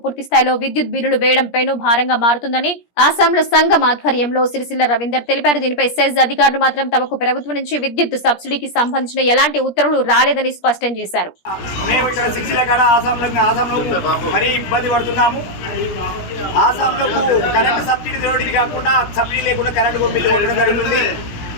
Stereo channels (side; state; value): right; late; 17 ms